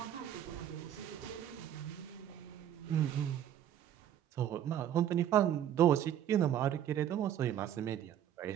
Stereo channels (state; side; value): quieter; left; 10.6 dB